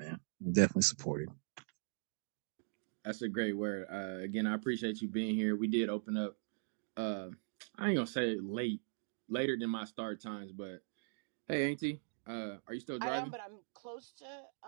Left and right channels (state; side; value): silent; left; digital silence